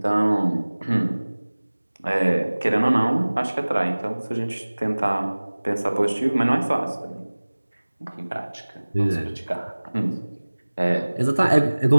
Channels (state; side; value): inverted; both; correlation -1.00